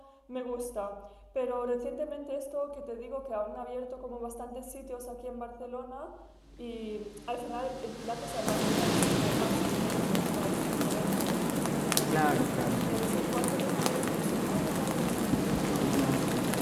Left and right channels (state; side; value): identical; both; correlation 1.00